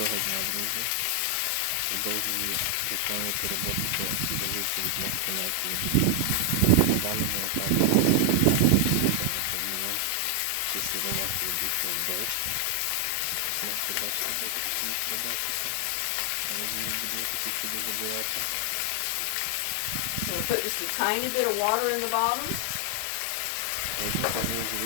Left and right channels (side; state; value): both; different; correlation 0.00